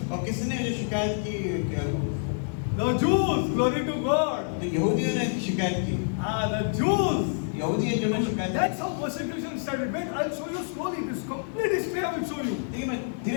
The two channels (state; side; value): silent; right; digital silence